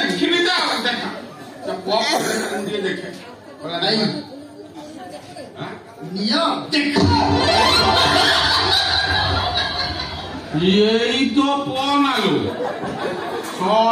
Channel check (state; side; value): identical; both; correlation 1.00